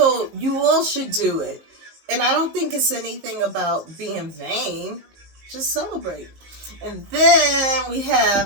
you all should do it. And I don't think it's anything about being vain. Just celebrate. And then we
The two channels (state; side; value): late; left; 19 ms